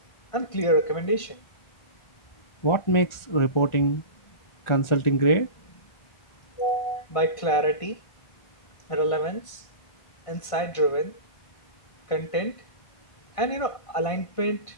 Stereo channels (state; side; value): late; right; 1.5 ms